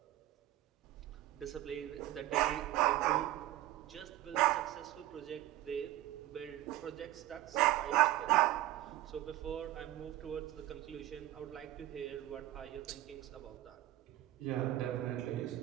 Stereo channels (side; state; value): left; quieter; 15.1 dB